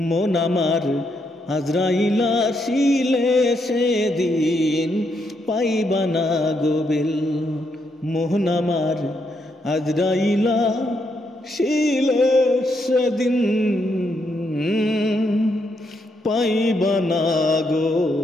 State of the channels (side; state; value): both; normal; correlation 0.78